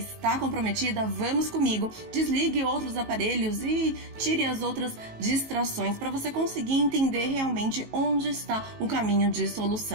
comprometida, vamos comigo. Desligue outros aparelhos e tire as outras distrações para você conseguir entender realmente onde está o caminho de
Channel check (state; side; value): late; left; 19 ms